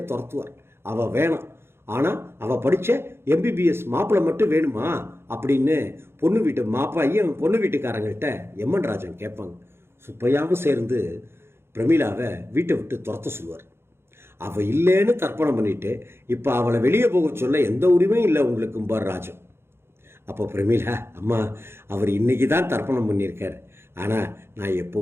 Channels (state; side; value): late; left; 0.12 ms